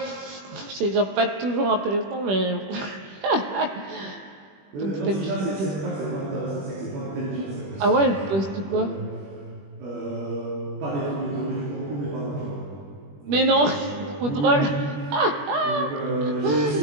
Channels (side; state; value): left; late; 21 ms